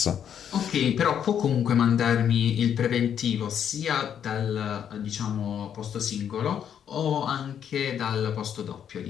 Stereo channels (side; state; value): right; quieter; 8.8 dB